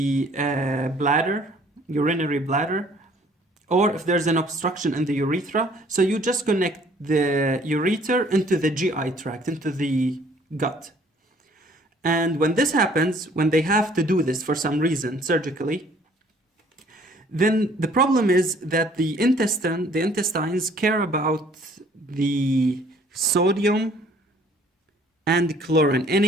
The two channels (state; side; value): normal; both; correlation 0.58